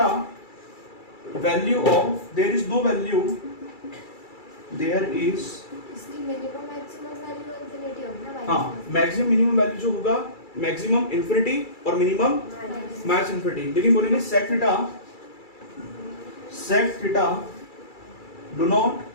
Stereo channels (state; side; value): late; right; 2.3 ms